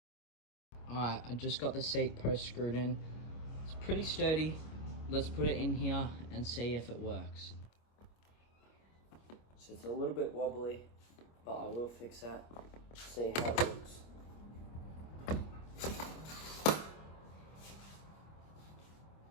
Alright, I just got the seat post screwed in. It's pretty sturdy. Let's put it in here and see if it works. So it's a little bit wobbly, but I will fix that. See how it looks.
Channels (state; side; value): late; right; 25 ms